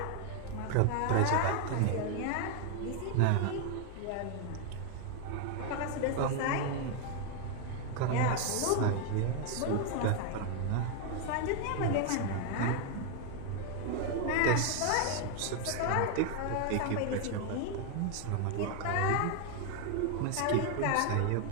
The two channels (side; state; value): both; different; correlation 0.01